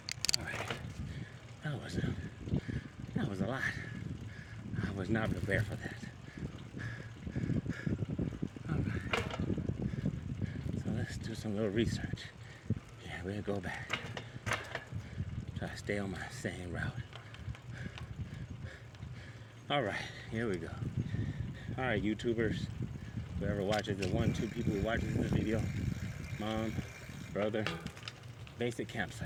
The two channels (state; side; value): identical; both; correlation 1.00